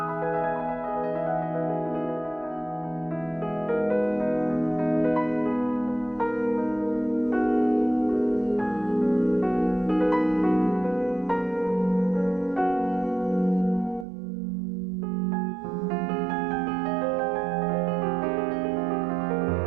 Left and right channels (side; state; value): left; drops out; at 14.1 s